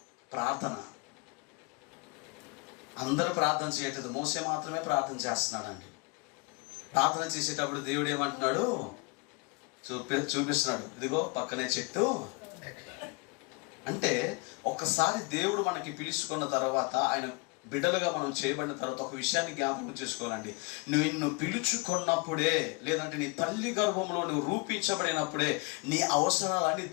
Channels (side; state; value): right; quieter; 28.9 dB